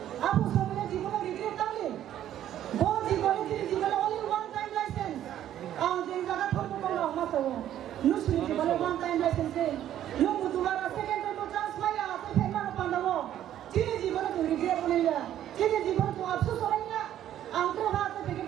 apu so me জীবনে রিগ্রেট তালে Bon জীবনে only one time license. Jadi jaga thormo kono maso. Nusri জীবনে one time license. Lu mudubara second time chance maya ate phema pandawo. Chini জীবনে tu regret bonilla. Chini জীবনে tu afsос horaiya. Angkro hate peke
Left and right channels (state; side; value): quieter; left; 11.6 dB